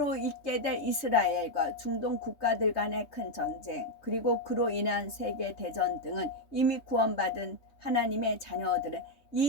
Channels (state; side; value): late; right; 3.3 ms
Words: 있게 될 이스라엘과 중동 국가들 간의 큰 전쟁, 그리고 그로 인한 세계대전 등은 이미 구원받은 하나님의 자녀들은